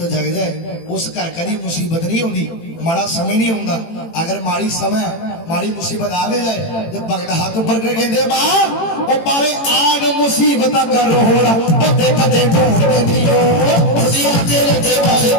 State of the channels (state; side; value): late; right; 18 ms